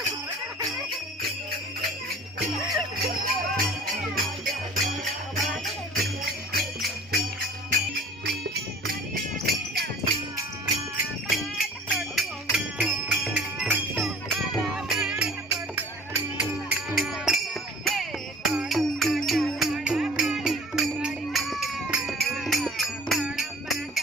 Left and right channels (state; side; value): normal; both; correlation 0.47